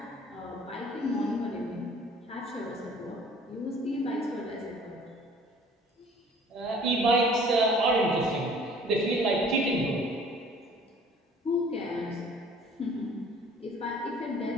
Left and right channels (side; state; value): both; normal; correlation 0.52